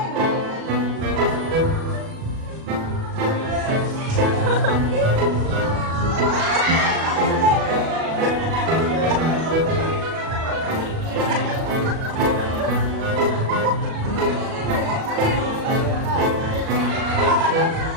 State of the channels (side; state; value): left; late; 37 ms